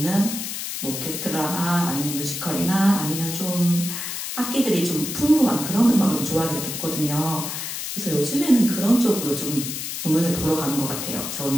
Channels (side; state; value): left; noise; hiss, 5 dB below the sound